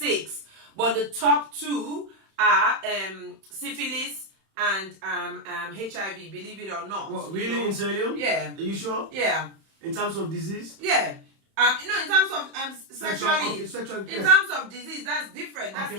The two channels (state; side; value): late; left; 31 ms